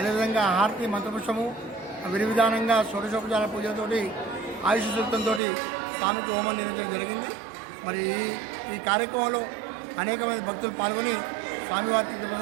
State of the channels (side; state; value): left; drops out; at 5.4 s